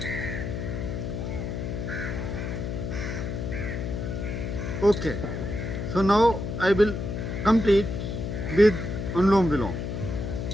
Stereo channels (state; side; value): noise; left; hum, 4 dB below the sound